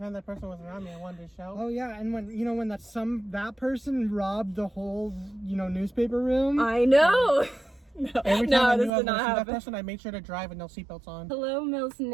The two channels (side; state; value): left; drops out; at 8.9 s